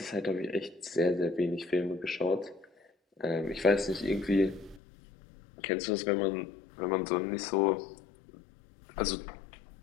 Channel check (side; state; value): right; drops out; at 4.8 s